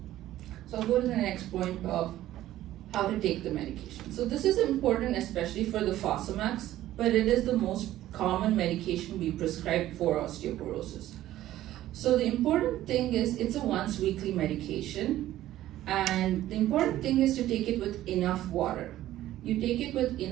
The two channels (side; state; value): left; quieter; 14.0 dB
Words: So I'll go to the next point of how to take the medication. So this is important especially for the Fosamax, but it is the most common medication we prescribe for osteoporosis. So the important thing is it's a once weekly medication, and the important thing is to take it with enough water. You take it with